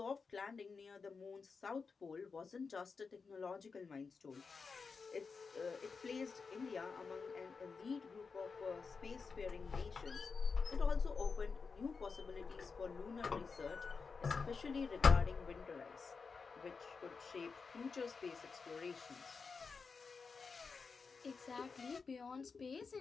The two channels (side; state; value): right; quieter; 5.0 dB